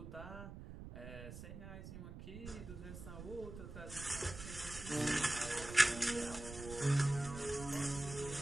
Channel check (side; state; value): right; noise; rumble, 11 dB below the sound